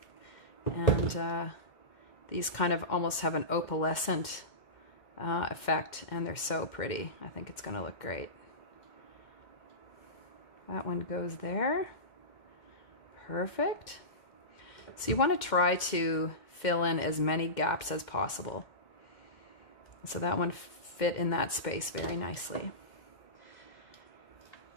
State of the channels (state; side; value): late; right; 2.1 ms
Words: And these kind of almost have an opalescent effect, and they're so pretty. I think it's going to look great. That one goes there. Perfect. So you want to try to fill in as many gaps as possible. So that one fit in that space very nicely.